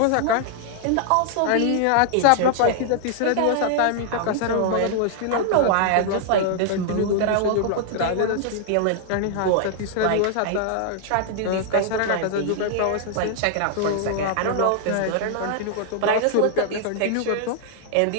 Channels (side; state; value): both; different; correlation 0.00